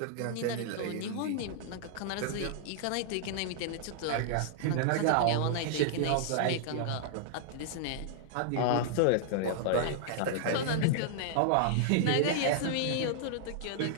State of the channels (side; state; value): both; different; correlation -0.01